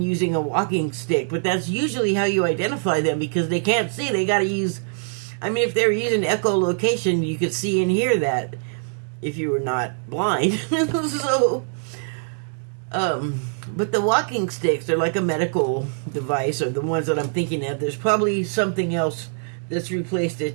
using a walking stick. But that's usually how you identify them, because they can't see. They got to use, if they're using echolocation, you could see and hear that if you were not blind. So, but the walking sticks are like a medical device, or the ones that I'm thinking of. There's probably something else that's replaced it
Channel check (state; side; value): silent; left; digital silence